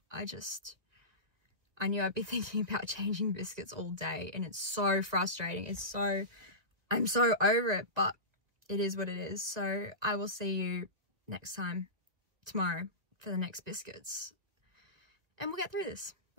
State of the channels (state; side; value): late; left; 1.8 ms